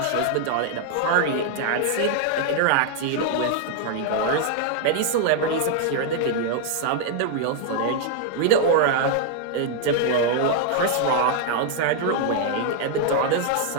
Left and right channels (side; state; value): both; different; correlation 0.00